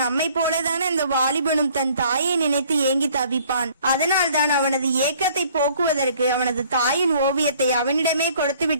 நம்மை போலதான அந்த வாலிபனும் தன் தாயை நினைத்து ஏங்கி தவிப்பான். அதனால் தான் அவனது ஏக்கத்தை போக்குவதற்கு அவனது தாயின் ஓவியத்தை அவனிடமே கொடுத்து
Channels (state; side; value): inverted; both; correlation -0.57